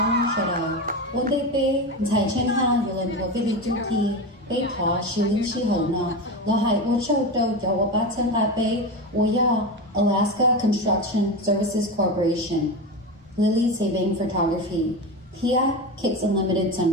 说的，我得被财政哈有人多费的主题。被他是临时候呢，然后我找到叫我把钱来被我要 Alaska Construction Services Corporation Lily Saving Photography Here Kids Unlimited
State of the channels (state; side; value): normal; both; correlation 0.21